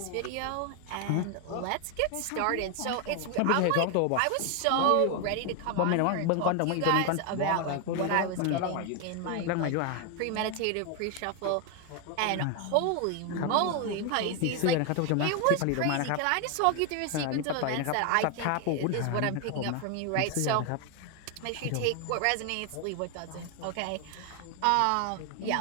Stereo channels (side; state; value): both; different; correlation 0.01